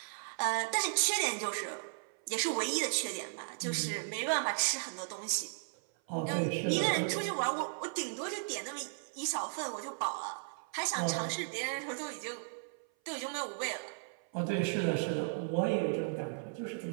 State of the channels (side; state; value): left; silent; 54 dB below the other